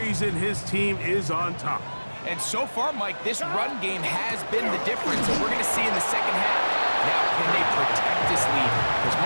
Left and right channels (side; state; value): both; inverted; correlation -1.00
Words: his team is on top. And so far, Mike, this run game has been the difference, and we're going to see in the second half. Now, can they protect this lead? Because,